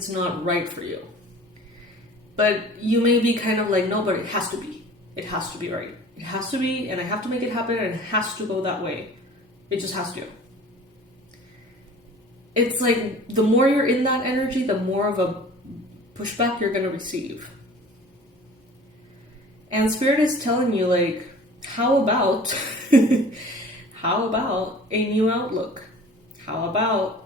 not right for you. But you may be kind of like, no, but it has to be. It has to be right. It has to be, and I have to make it happen, and it has to go that way. It just has to. it's like the more you're in that energy, the more of a pushback you're going to receive. And Spirit is telling you, like, how about how about a new outlook? How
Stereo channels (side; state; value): both; normal; correlation 0.45